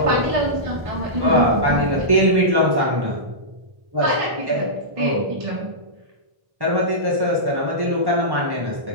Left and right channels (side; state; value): left; late; 1.1 ms